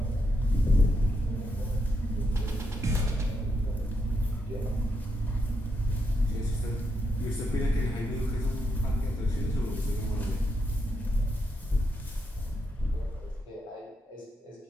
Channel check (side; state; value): both; normal; correlation 0.82